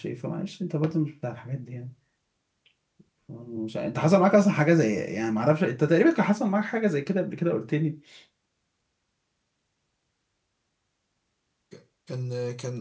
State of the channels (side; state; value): both; identical; correlation 1.00